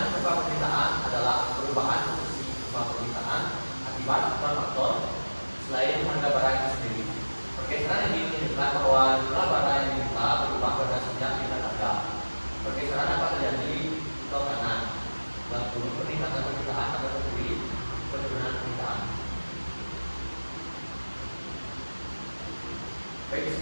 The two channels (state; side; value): inverted; both; correlation -1.00